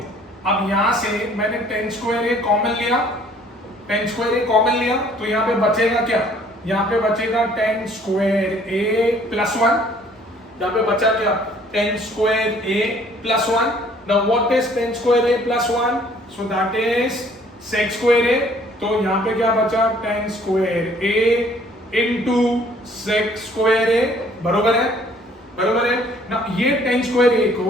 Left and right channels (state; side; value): normal; both; correlation 0.58